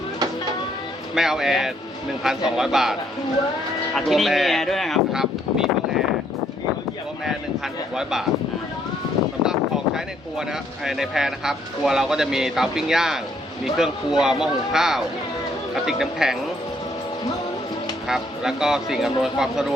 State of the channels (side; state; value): both; normal; correlation 0.69